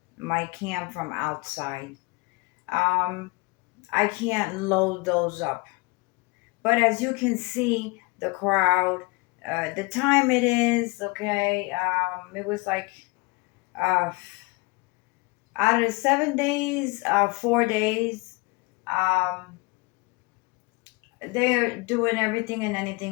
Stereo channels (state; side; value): quieter; right; 27.1 dB